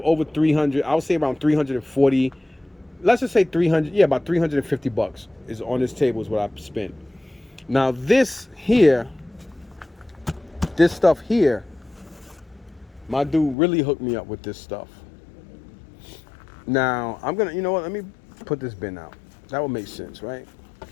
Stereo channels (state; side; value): drops out; right; at 13.6 s